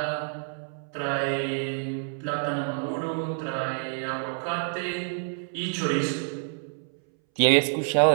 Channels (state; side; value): silent; left; 60 dB below the other